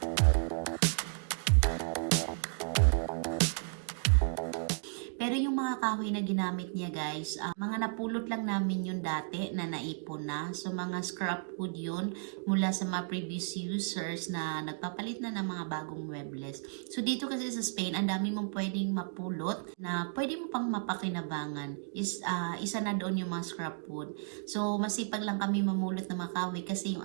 Pero yung mga kahoy na ginamit niya guys, mga napulot lang namin yung dati na naipon na. So mga scrap wood yun mula sa mga previous users na nagpapalit na ng mga bagong muebles. So dito kasi sa Spain, ang dami mong pwedeng mapulot na pwede mo pang mapakinabangan. Isa na doon yung mga scrap wood. So masipag lang kami mamulot ng mga kahoy kasi yung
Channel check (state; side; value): silent; left; digital silence